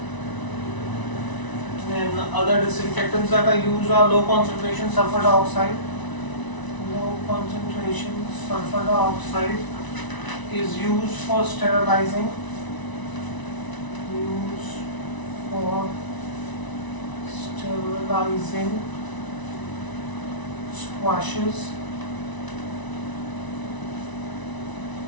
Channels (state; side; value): late; right; 1.0 ms